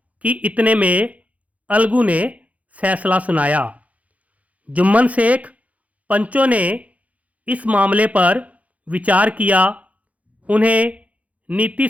कि इतने में अलगू ने फैसला सुनाया। जुम्मन शेख पंचों ने इस मामले पर विचार किया। उन्हें नीति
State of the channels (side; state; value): left; late; 0.068 ms